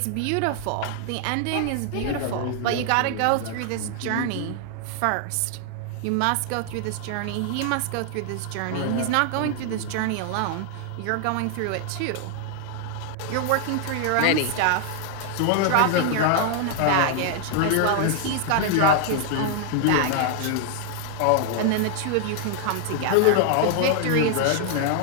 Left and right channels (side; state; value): both; different; correlation 0.00